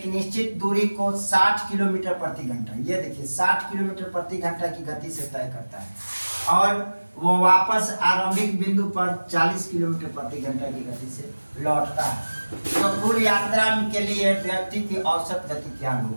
निश्चित दूरी को 60 किलोमीटर प्रति घंटा, ये देखिए 60 किलोमीटर प्रति घंटा की गति से तय करता है और वो वापस आरंभिक बिंदु पर 40 किलोमीटर प्रति घंटा की गति से लौटता है। तो कुल यात्रा के लिए व्यक्ति की औसत गति क्या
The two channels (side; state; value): both; inverted; correlation -1.00